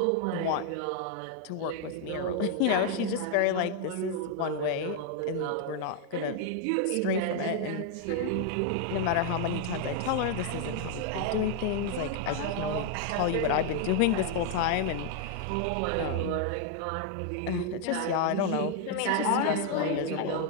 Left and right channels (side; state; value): both; different; correlation 0.00